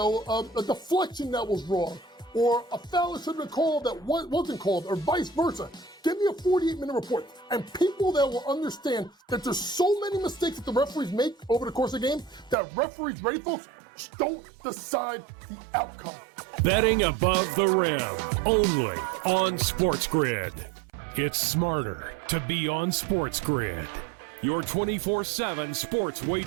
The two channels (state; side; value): drops out; left; at 12.6 s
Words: deflection that was wrong or a foul that should have been called that wasn't called or vice versa. Give me a 48-minute report. And people that will understand that there's so many mistakes that the referees make over the course of the game that referees, ready folks, don't decide the outcome. Betting above the rim, only on SportsGrid. It's smarter to be on SportsGrid. Your 24/7 sports